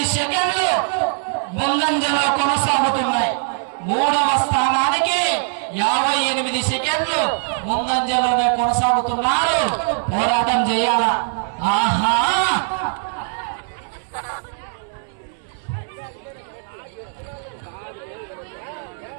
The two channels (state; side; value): silent; left; 65 dB below the other